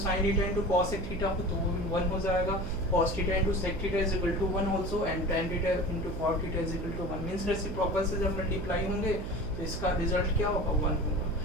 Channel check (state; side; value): noise; right; hum, 6 dB below the sound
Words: theta into cosec theta हो तो वो भी 1 हो जाएगा, cos theta into sec theta is equal to 1 also and tan theta into cot theta is equal to 1 means reciprocal से जब मल्टीप्लाई होंगे तो इसका रिजल्ट क्या होगा 1 होगा,